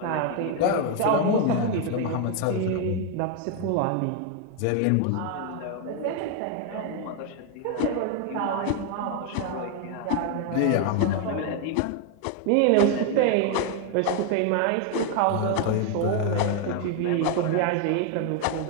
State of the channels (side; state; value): both; different; correlation 0.01